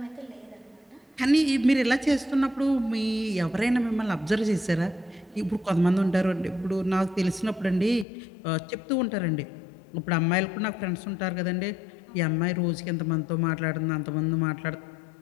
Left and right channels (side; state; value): right; drops out; at 8.1 s